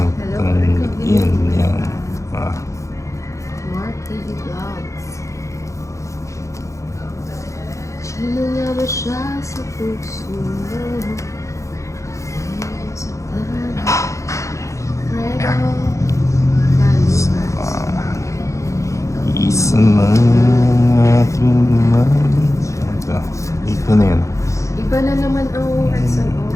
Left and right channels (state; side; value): late; right; 0.15 ms